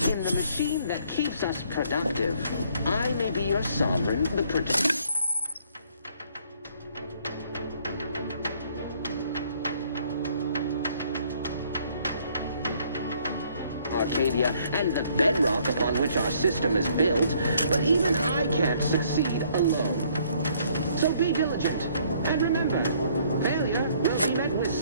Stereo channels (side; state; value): both; inverted; correlation -0.64